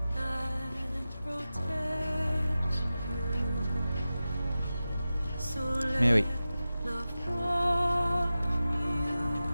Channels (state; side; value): inverted; both; correlation -0.94